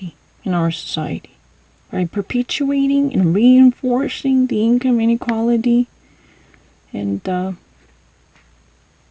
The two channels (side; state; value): both; identical; correlation 1.00